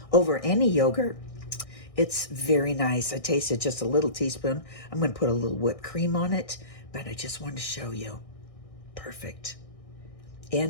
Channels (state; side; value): late; right; 1.6 ms